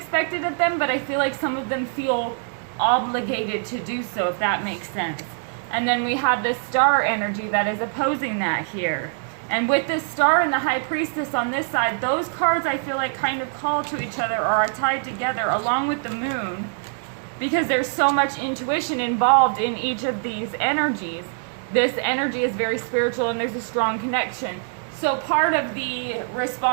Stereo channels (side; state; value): left; silent; 63 dB below the other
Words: of them, but I feel like some of them feel obligated to do so, if that makes sense. And then we have this star energy that is opposing that here. And with this star and the High Priestess on this side, those cards I feel like kind of call to each other or are tied together along with the moon, because there's so much intuition involved in each of these energies. This energy is very spiritual and there's a strong connection. So part of the